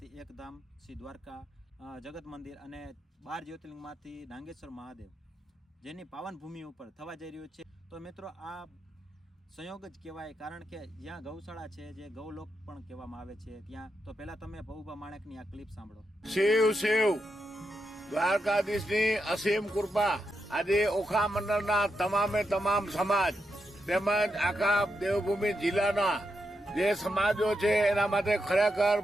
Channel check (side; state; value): both; normal; correlation 0.84